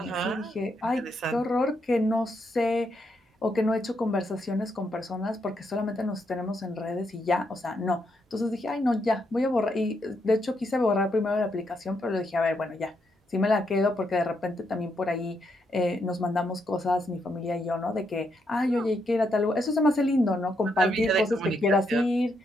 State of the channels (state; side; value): normal; both; correlation 0.79